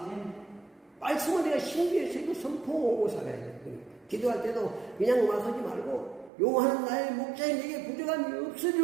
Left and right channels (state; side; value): drops out; left; at 6.3 s